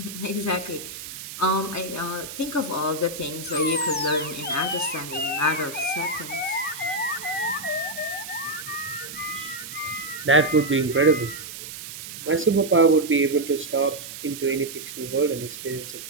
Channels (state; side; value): noise; right; hiss, 10 dB below the sound